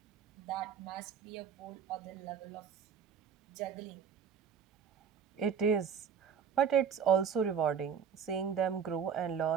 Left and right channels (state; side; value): quieter; left; 7.2 dB